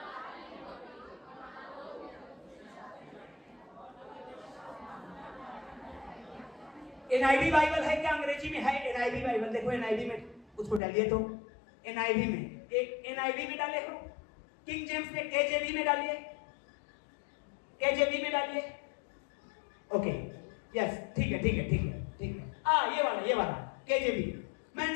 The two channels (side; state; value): right; drops out; at 10.8 s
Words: एनआईवी बाइबल है क्या? अंग्रेजी में है एनआईवी बाइबल। देखो एनआईवी में उसको डालिए, तो एनआईवी में, एक एनआईवी में डाले हो, किंग जेम्स में केजेवी में डालिए, केजेवी में डालिए। ओके, यस, ठीक है, ठीक है, ठीक है, ठीक है। ये वाला केजेवी। मैं